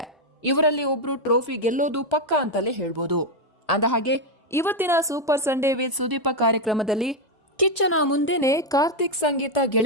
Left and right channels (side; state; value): both; normal; correlation 0.03